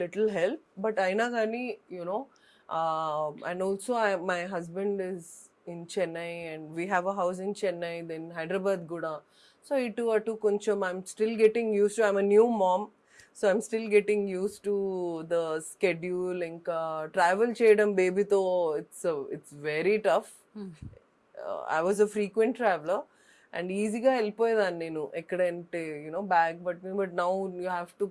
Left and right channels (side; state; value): both; identical; correlation 1.00